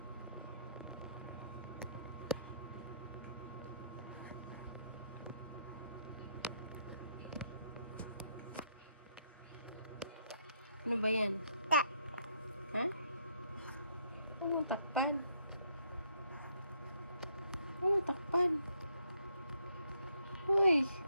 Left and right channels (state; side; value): inverted; both; correlation -0.72